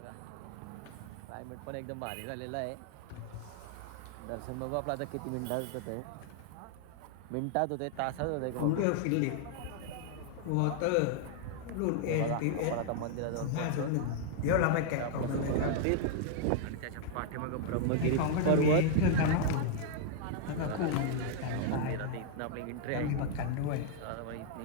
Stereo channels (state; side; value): different; both; correlation -0.01